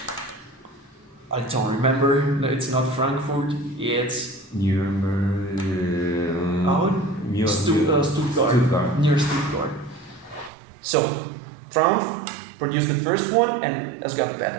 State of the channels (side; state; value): left; drops out; at 10.5 s